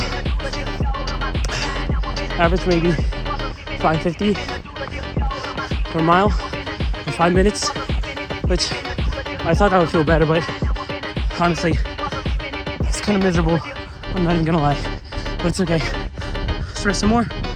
average maybe 550 per mile in 5 minutes, which I thought that would feel better, but honestly, it's kind of miserable. I'm not even gonna lie, but it's okay. Let's rest some more.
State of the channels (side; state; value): both; identical; correlation 1.00